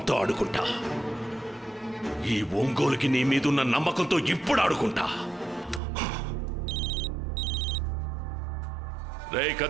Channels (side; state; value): left; drops out; at 5.8 s